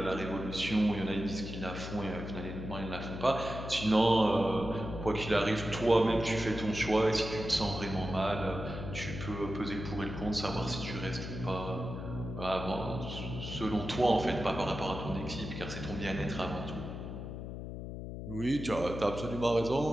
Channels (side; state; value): left; noise; hum, 7 dB below the sound